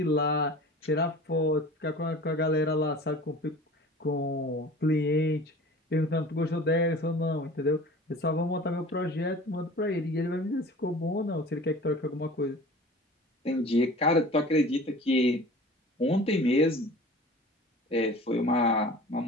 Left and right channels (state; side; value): normal; both; correlation 0.41